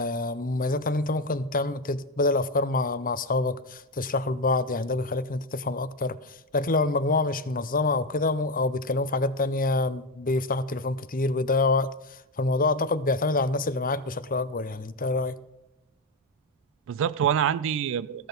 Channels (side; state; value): both; normal; correlation 0.11